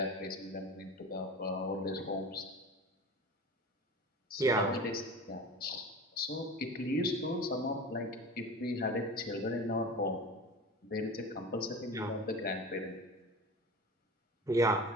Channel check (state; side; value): normal; both; correlation 0.34